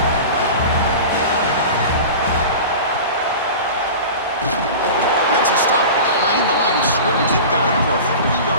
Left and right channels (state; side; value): inverted; both; correlation -0.33